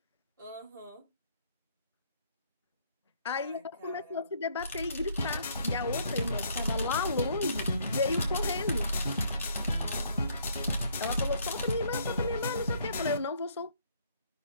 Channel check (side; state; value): both; inverted; correlation -0.65